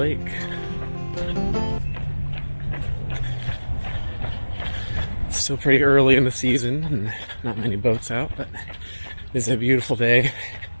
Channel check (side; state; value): both; inverted; correlation -1.00